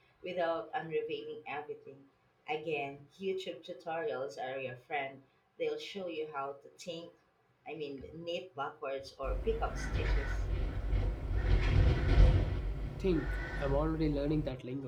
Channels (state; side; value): identical; both; correlation 1.00